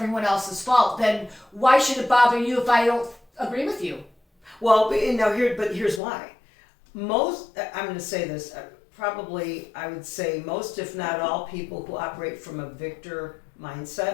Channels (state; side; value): drops out; right; at 6.0 s